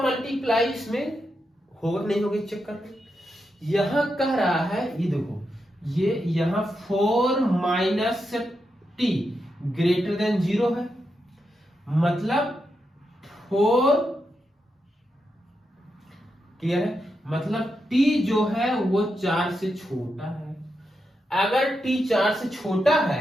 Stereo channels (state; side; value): normal; both; correlation 0.86